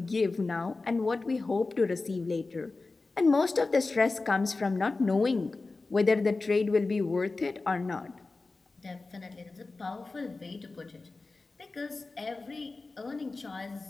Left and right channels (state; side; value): quieter; right; 3.6 dB